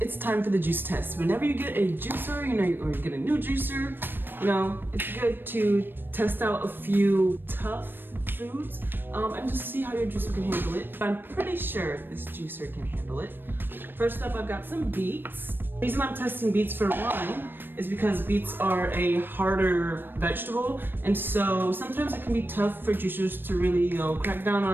it's time for the juice test. Whenever you get a juicer, you know, or you get a new juicer, you know, it's good to test out a few tough foods and just see how your juicer can handle it. I'm pretty sure this juicer can handle it. First up, I've got some beets. The reason I'm testing beets for one is because beets are a harder vegetable, and so sometimes it can be tough for juicers to really, you know, crack down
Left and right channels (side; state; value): left; late; 0.096 ms